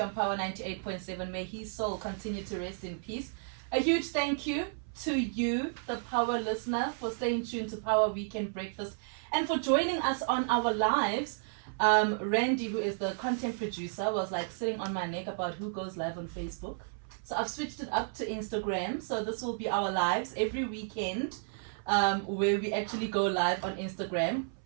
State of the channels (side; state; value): left; silent; 56 dB below the other